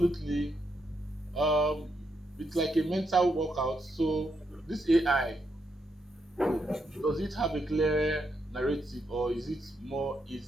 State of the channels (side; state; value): both; normal; correlation 0.80